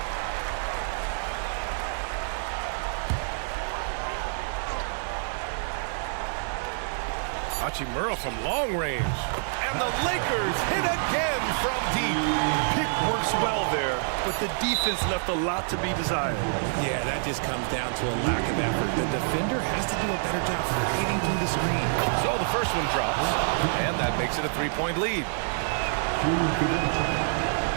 Hachimura from long range. And the Lakers hit again from deep. Pick works well there, but the defense left a lot to be desired. Yeah, that just comes down to a lack of effort. The defender has to do a better job fighting through the screen. So the first one drops, and that makes it a 3-point lead.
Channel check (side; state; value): left; silent; digital silence